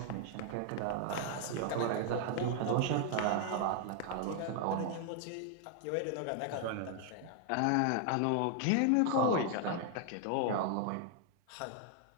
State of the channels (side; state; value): both; different; correlation 0.00